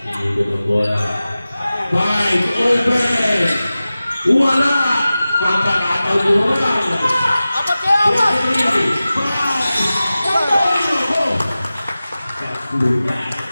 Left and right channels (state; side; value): inverted; both; correlation -0.96